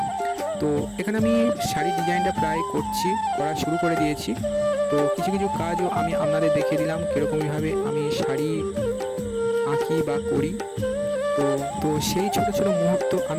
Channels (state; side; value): identical; both; correlation 1.00